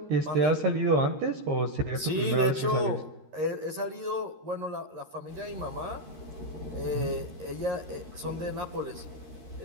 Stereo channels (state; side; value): late; left; 13 ms